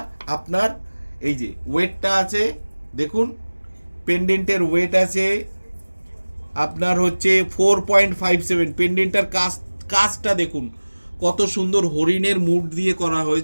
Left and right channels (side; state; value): both; inverted; correlation -1.00